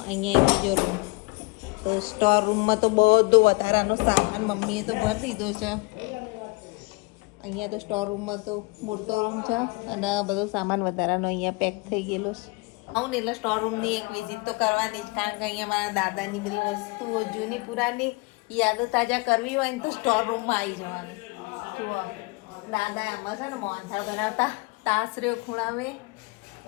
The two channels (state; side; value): quieter; right; 27.5 dB